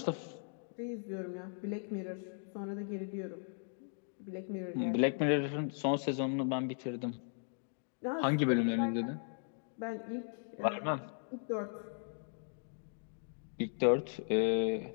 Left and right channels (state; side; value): silent; right; digital silence